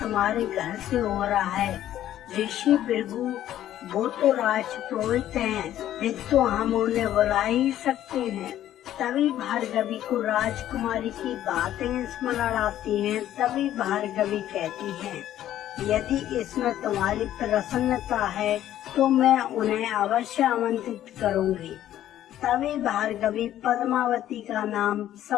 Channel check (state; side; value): quieter; right; 12.2 dB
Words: घर से हो रहा है। ऋषि भृगु वो तो राजपुरोहित हैं, फिर तो हम उन्हें बुला ही सकते हैं। तभी भार्गवी को राजकुमारी की बातें स्मरण आती हैं। तभी भार्गवी कहती है, यदि इसमें तुम्हारी प्रसन्नता है तो मैं उन्हें अवश्य आमंत्रित करूंगी। तभी भार्गवी पद्मावती का नाम